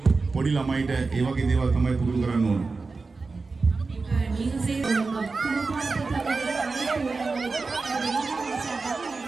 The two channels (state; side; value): quieter; left; 4.1 dB